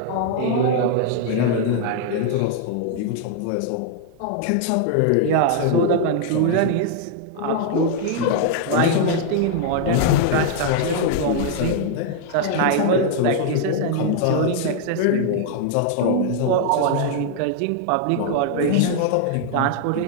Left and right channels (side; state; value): both; different; correlation 0.00